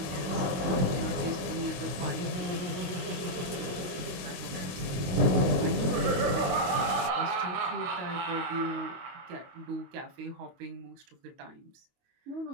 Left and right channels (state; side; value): late; left; 22 ms